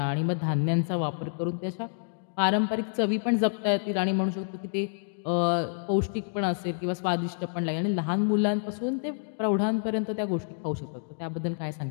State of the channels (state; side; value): silent; right; digital silence